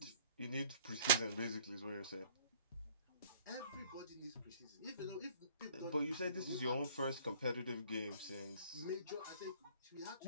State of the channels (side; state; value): both; inverted; correlation -0.53